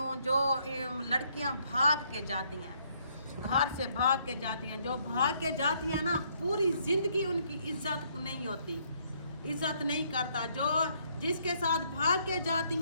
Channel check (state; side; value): inverted; both; correlation -0.69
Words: جو لڑکیاں بھاگ کے جاتی ہیں گھر سے بھاگ کے جاتی ہیں جو بھاگ کے جاتی ہیں نا پوری زندگی ان کی عزت نہیں ہوتی. عزت نہیں کرتا. جو جس کے ساتھ بھاگ کے